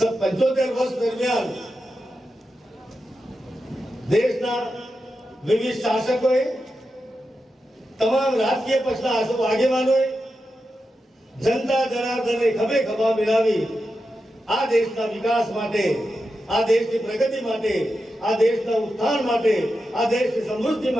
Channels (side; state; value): both; normal; correlation 0.89